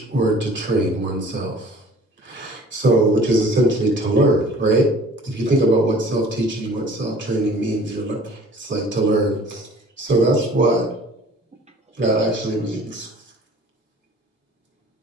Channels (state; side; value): normal; both; correlation 0.49